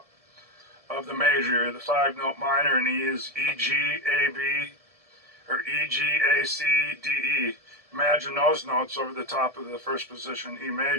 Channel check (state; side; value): late; left; 1.7 ms